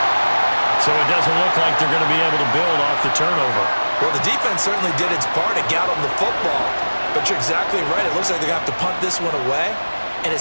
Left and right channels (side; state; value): both; inverted; correlation -1.00